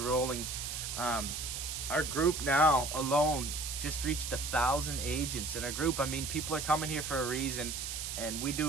rolling. Our group now alone just reached 1,000 agents in our group. I mean, people are coming here for a reason, and we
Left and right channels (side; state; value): right; noise; hiss, 5 dB below the sound